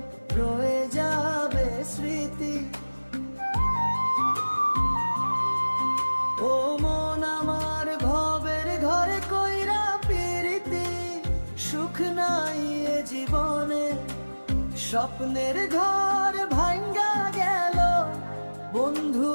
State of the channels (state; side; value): inverted; both; correlation -1.00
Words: রয়ে যাবে স্মৃতি। ও মন আমার ভবের ঘরে কইরা পিরিতি, সুখ নাই এ জীবনে, স্বপ্নের ঘর ভাঙ্গা গেল বন্ধু